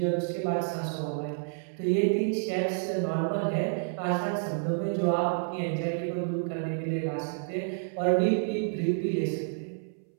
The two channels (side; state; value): left; silent; 58 dB below the other